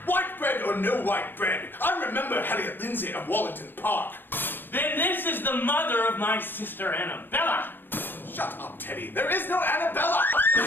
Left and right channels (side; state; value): right; late; 0.097 ms